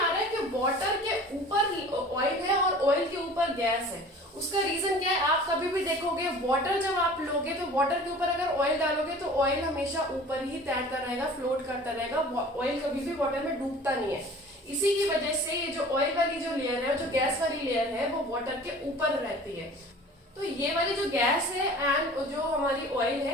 रहा है कि वाटर के ऊपर ऑयल है और ऑयल के ऊपर गैस है। उसका रीजन क्या है, आप कभी भी देखोगे वाटर जब आप लोगे तो वाटर के ऊपर अगर ऑयल डालोगे तो ऑयल हमेशा ऊपर ही तैरता रहेगा, फ्लोट करता रहेगा, ऑयल कभी भी वाटर में डूबता नहीं है। इसी की वजह से ये जो ऑयल वाली जो लेयर है, जो गैस वाली लेयर है, वो वाटर के ऊपर रहती है। तो ये वाली जो गैस है एंड जो हमारी ऑयल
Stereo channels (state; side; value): normal; both; correlation 0.44